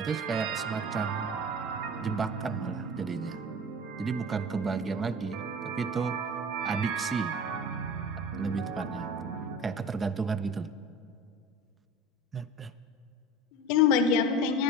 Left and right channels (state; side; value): normal; both; correlation 0.36